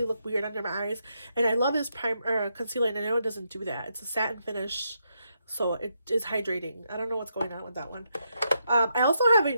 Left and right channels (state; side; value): inverted; both; correlation -0.81